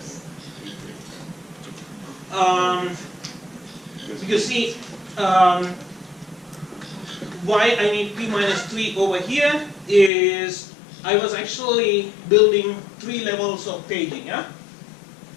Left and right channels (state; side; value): drops out; right; at 10.1 s